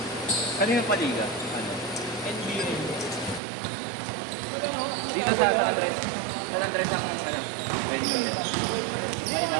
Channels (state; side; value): drops out; left; at 3.4 s